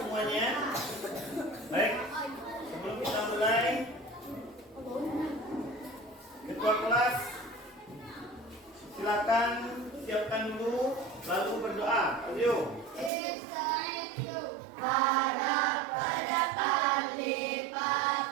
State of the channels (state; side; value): drops out; left; at 13.1 s